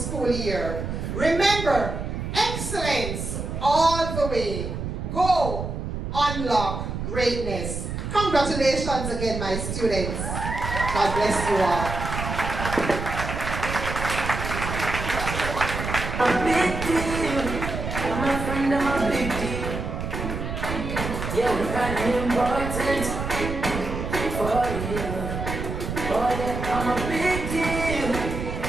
year. Remember, excellence all the way. Go unlock greatness. Congratulations again, my students. God bless you all. A big deal. My friend, I'm a big deal. Yeah, we're kind of important for you. Oh yeah, I'm a big deal.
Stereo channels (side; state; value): right; noise; rumble, 5 dB below the sound